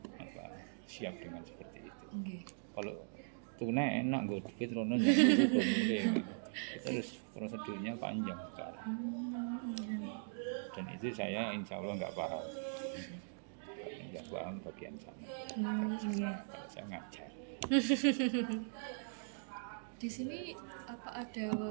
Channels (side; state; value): left; silent; digital silence